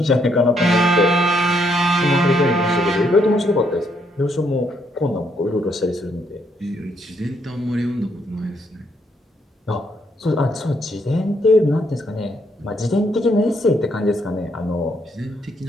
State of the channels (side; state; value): both; normal; correlation 0.73